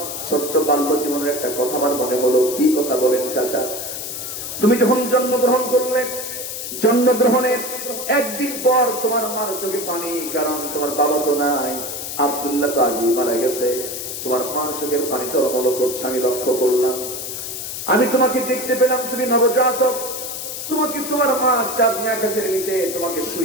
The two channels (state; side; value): noise; left; hiss, 6 dB below the sound